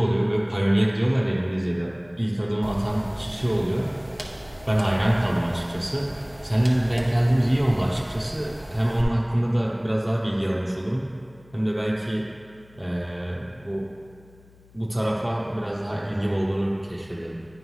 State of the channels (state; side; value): noise; left; hum, 26 dB below the sound